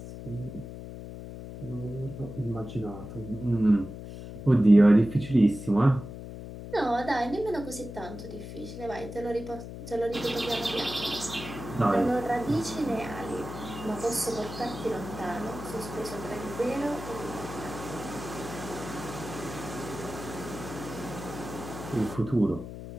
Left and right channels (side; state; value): left; noise; hum, 10 dB below the sound